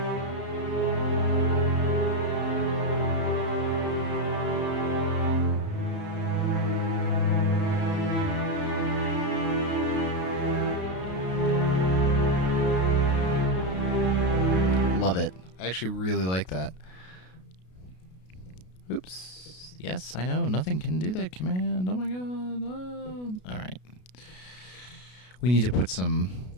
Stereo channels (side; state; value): right; late; 32 ms